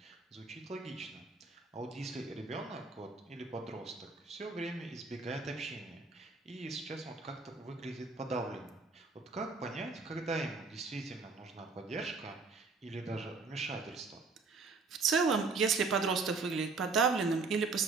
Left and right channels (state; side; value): quieter; left; 4.2 dB